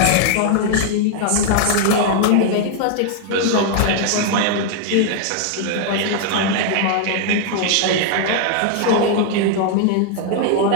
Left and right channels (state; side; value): different; both; correlation 0.00